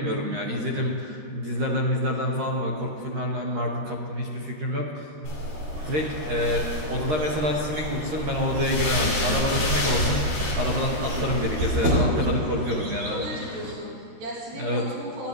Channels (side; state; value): left; late; 13 ms